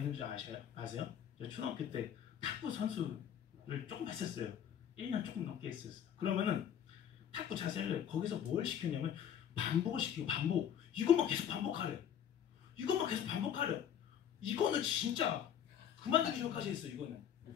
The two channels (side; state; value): right; quieter; 9.2 dB